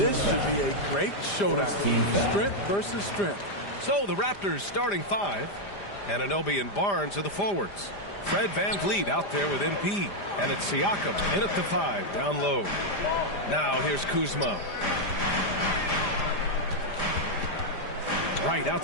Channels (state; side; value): late; right; 5.0 ms